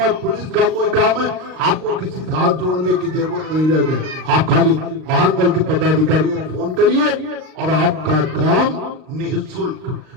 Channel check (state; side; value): late; left; 39 ms